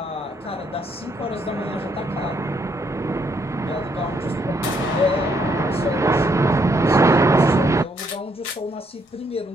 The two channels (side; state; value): both; normal; correlation 0.73